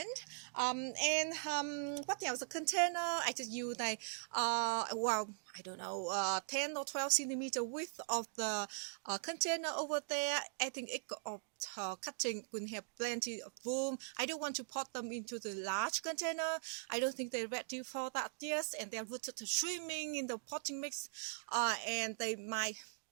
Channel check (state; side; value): silent; left; digital silence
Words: What else? The container I just use I don't know, 10 or 12 centimeter width of the container over there. I think it of cutting will have plenty of room. I don't want to pot them into the large container. I don't think they're ready for that yet, and they're rooted to swimming in the potting mix, and they might